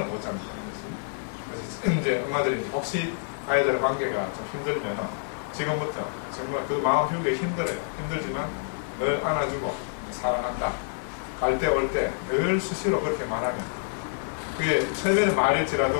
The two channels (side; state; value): right; silent; 60 dB below the other